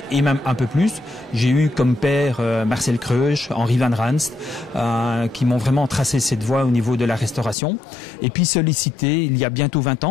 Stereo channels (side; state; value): right; drops out; at 7.6 s